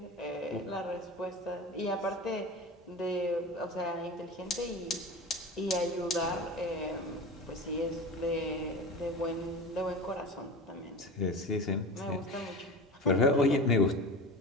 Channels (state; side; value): normal; both; correlation 0.31